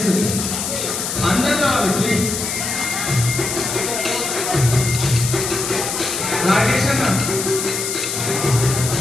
అందరూ రావాలి ప్లీజ్. రాకేష్ అన్న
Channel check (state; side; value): noise; left; hiss, 3 dB below the sound